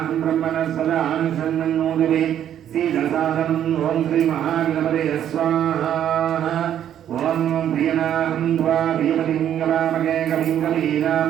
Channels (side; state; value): left; quieter; 10.3 dB